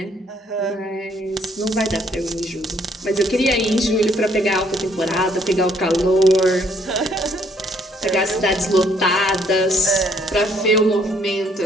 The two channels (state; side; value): normal; both; correlation 0.65